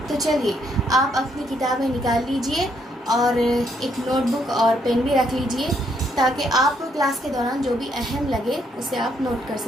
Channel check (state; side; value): normal; both; correlation 0.72